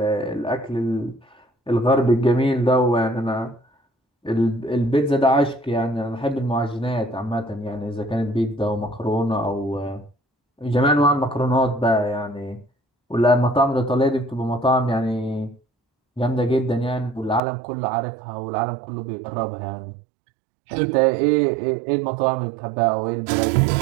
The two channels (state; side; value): drops out; left; at 17.4 s